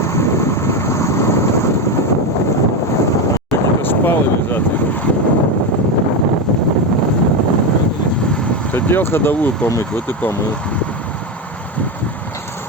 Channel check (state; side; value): normal; both; correlation 0.13